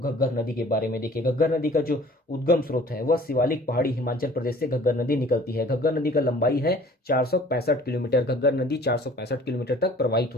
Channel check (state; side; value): normal; both; correlation 0.50